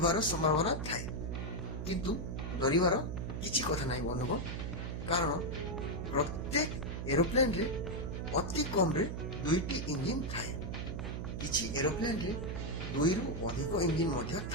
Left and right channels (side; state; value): right; noise; hum, 4 dB below the sound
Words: ସମ୍ଭାବନା ଥାଏ। କିନ୍ତୁ ଡରିବାର କିଛି କଥା ନାହିଁ ବନ୍ଧୁଗଣ, କାରଣ ପ୍ରତ୍ୟେକ ଏରୋପ୍ଲେନ୍ରେ ଅତି କମ୍ରେ 2ଟି ଇଞ୍ଜିନ୍ ଥାଏ। କିଛି ଏରୋପ୍ଲେନ୍ରେ 2ରୁ ଅଧିକ ଇଞ୍ଜିନ୍ ମଧ୍ୟ